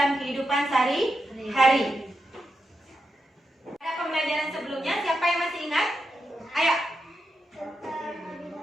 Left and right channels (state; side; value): normal; both; correlation 0.86